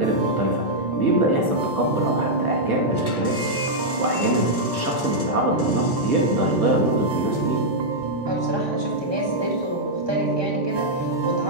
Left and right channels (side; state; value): left; late; 1.2 ms